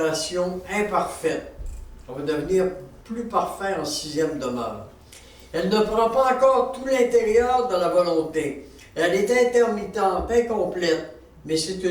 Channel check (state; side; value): identical; both; correlation 1.00